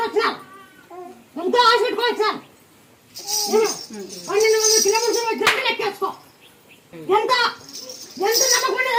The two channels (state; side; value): identical; both; correlation 1.00